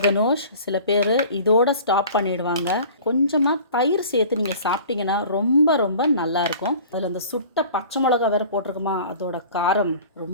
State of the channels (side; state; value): both; inverted; correlation -0.44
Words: கனோஷ் சில பேர் இதோட ஸ்டாப் பண்ணிடுவாங்க. கொஞ்சமாக தயிர் சேர்த்து நீங்கள் சாப்பிட்டீங்கன்னா ரொம்ப ரொம்ப நல்லாயிருக்கும். அதில் அந்த சுட்ட பச்சை மிளகா வேறு போட்டிருக்குமா, அதோட காரம்